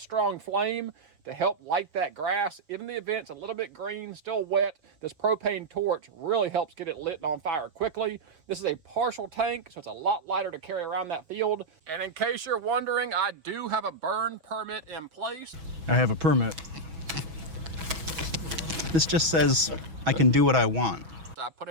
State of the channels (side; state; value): left; late; 6.2 ms